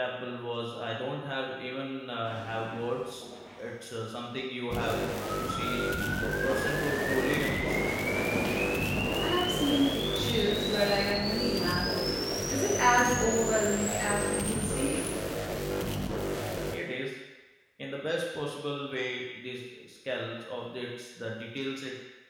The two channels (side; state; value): both; identical; correlation 1.00